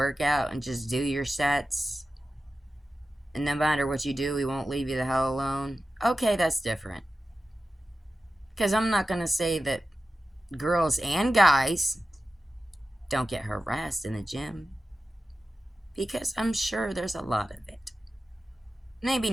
out and just do your sets, and no matter what you do, he won't leave you the hell alone, okay, that's different. Because I'm not going to say that girls and guys don't get harassed in the gym, because I'm sure there's a lot of it. Maybe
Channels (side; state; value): both; normal; correlation 0.93